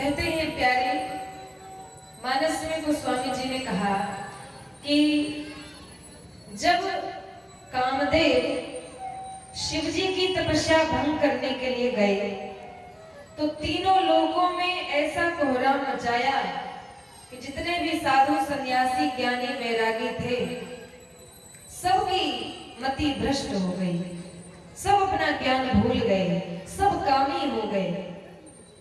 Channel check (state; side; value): identical; both; correlation 1.00